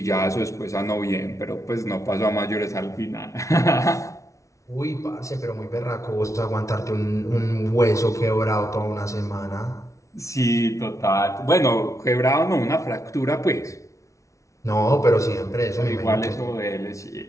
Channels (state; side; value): late; right; 0.15 ms